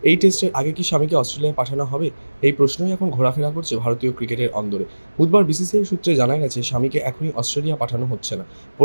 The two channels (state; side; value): inverted; both; correlation -1.00